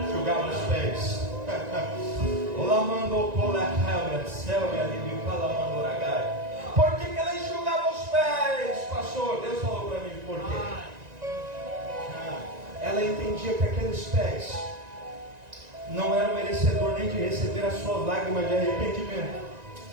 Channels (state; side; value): late; left; 1.9 ms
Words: Enxugava os pés. Por que ela enxugava os pés, pastor? Deus falou para mim por quê. Ela entendia que aqueles pés não eram merecedor nem de receber as suas lágrimas de arrependimento.